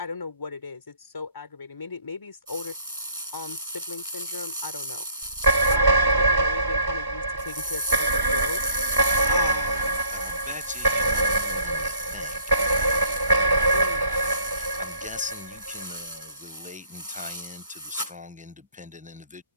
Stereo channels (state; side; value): inverted; both; correlation -0.58